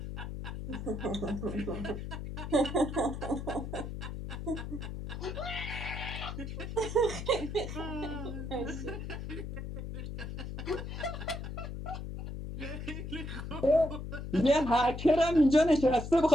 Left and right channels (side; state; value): left; noise; hum, 7 dB below the sound